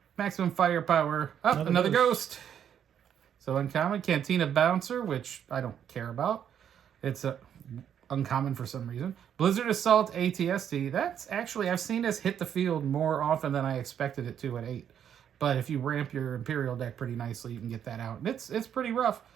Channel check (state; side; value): quieter; left; 9.0 dB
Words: Maximum Firepower. Oh, another Ghost. So uncommon, Cantina Bouncer, which I don't care about. It's uncommon for some reason. Blizzard Assault ATST. That's actually, I've seen this hit the field more often than I expected it to at 8. But if you ramp your Imperial deck pretty nicely, you can get that out. And it's pretty rough.